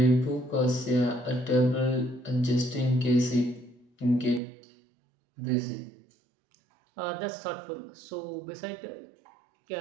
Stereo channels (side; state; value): left; drops out; at 4.4 s